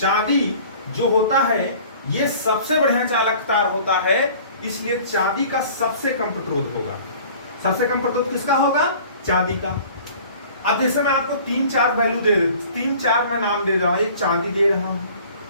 जो होता है ये सबसे बढ़िया चालक तार होता है, इसलिए चांदी का सबसे कम प्रतिरोध होगा। सबसे कम प्रतिरोध किसका होगा, चांदी का। अब जैसे मैं आपको 3-4 वैल्यू दे, 3-4 मैं नाम दे रहा हूं। एक चांदी दे रहा हूं,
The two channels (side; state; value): both; inverted; correlation -0.48